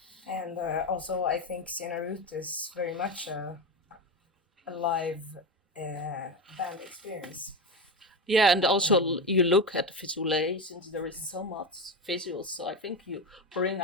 And also, I think Sienna Root is very much a live band experience. Yeah, and also you look at the visual aids, since there is so much visuals, so I think you bring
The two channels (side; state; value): both; normal; correlation 0.17